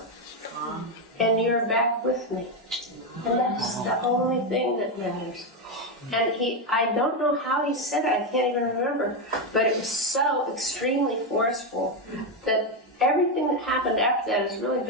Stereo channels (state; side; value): normal; both; correlation 0.07